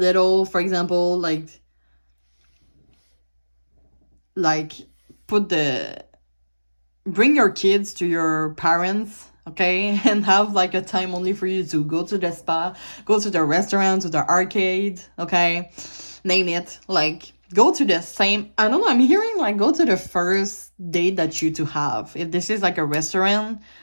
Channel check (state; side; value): inverted; both; correlation -1.00